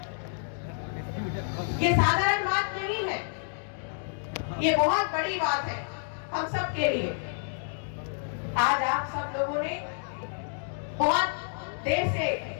ये साधारण बात नहीं है, ये बहुत बड़ी बात है हम सब के लिए। आज आप सब लोगों ने बहुत देर से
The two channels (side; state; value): right; silent; digital silence